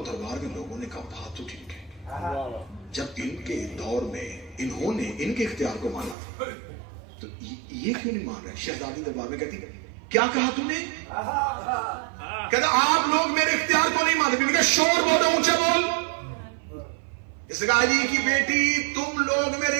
دربار میں لوگوں نے کہا بات تو ٹھیک ہے، جب ان کے دور میں انہوں نے ان کے اختیار کو مانا تھا تو یہ کیوں نہیں مان رہے؟ شہزادی دربار میں کہتی کیا کہا تم نے؟ کہتا آپ لوگ میرے اختیار کو نہیں مانتے۔ میں نے کہا شور بولو، اونچے بول۔ اس نے کہا علی کی بیٹی تم لوگ میرے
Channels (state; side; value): drops out; left; at 6.2 s